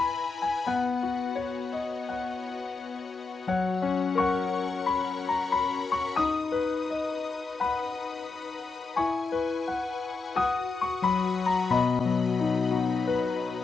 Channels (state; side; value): quieter; right; 4.0 dB